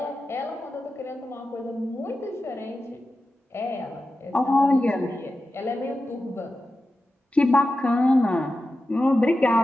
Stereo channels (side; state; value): both; normal; correlation 0.92